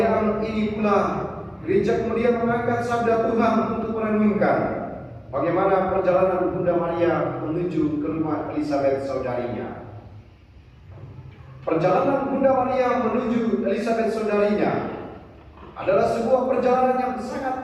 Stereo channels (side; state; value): both; identical; correlation 1.00